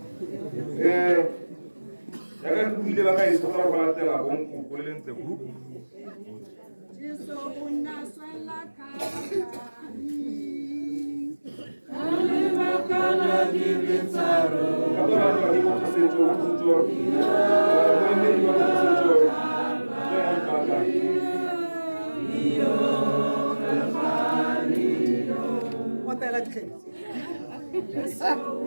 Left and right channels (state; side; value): inverted; both; correlation -1.00